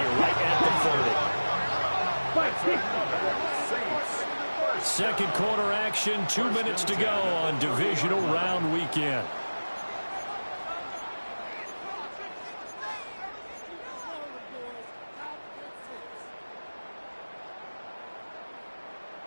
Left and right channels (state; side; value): inverted; both; correlation -1.00